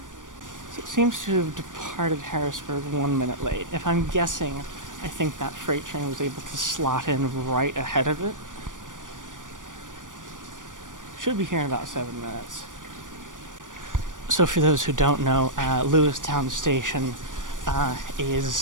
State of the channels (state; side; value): late; left; 0.88 ms